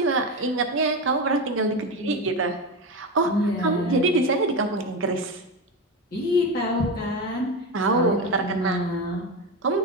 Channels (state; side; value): normal; both; correlation 0.18